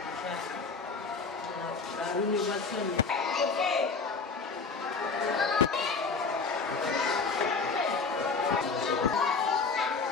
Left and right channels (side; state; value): right; quieter; 4.6 dB